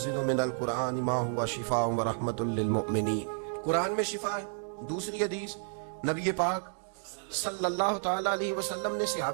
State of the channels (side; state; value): left; silent; digital silence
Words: مِنَ الْقُرْآنِ مَا هُوَ شِفَاءٌ وَرَحْمَةٌ لِّلْمُؤْمِنِينَ۔ قرآن میں شفا ہے۔ دوسری حدیث نبی پاک صلی اللہ تعالی علیہ وسلم نے